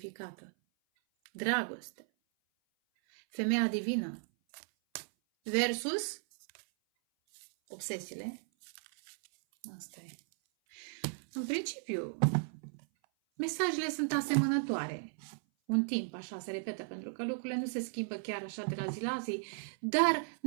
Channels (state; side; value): silent; left; 54 dB below the other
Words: Dragoste. Femeia divină. Versus obsesiile. Asta e. În principiu, mesajele sunt asemănătoare. Un timp așa se repetă, pentru că lucrurile nu se schimbă chiar așa de la zi la zi, dar